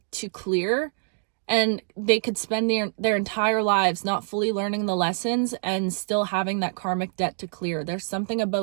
to clear, and they could spend their entire lives not fully learning the lessons and still having that karmic debt to clear. There's something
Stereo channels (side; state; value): left; silent; digital silence